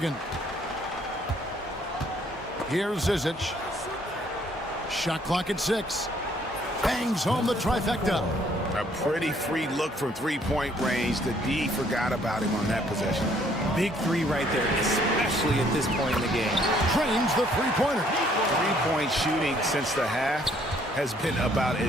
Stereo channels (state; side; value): normal; both; correlation 0.64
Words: Here's Zizic. Shot clock at 6. Bangs home the trifecta. A pretty free look from 3-point range. The D forgot about him on that possession. Big 3 right there, especially at this point in the game. Trains the 3-pointer. 3-point shooting since the half has been about